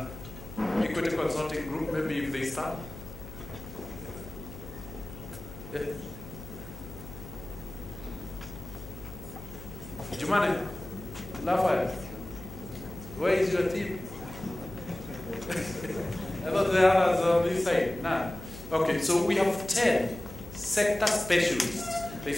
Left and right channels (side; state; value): left; noise; hum, 13 dB below the sound